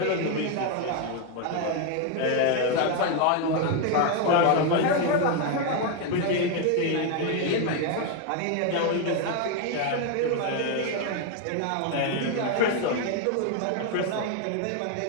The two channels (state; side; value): different; both; correlation 0.01